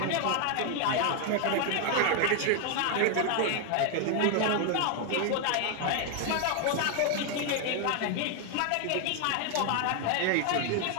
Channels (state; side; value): different; both; correlation 0.01